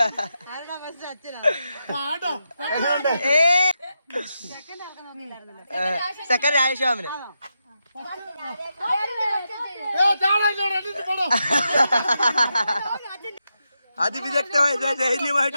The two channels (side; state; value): both; inverted; correlation -0.86